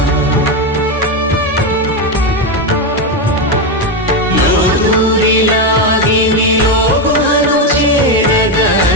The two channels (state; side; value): normal; both; correlation 0.09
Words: లోదూరిలాగి నియోగుహను చేరగా